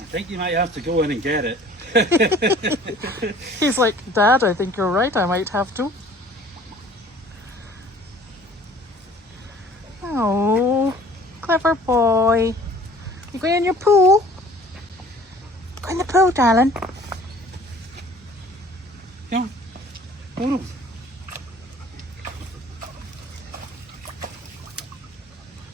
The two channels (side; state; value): both; normal; correlation 0.51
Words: think you might have to go in and get it. He's like, Dad, I think you're right. I might have to. Oh, clever boy. You going in your pool? Go in the pool, darling. Come on.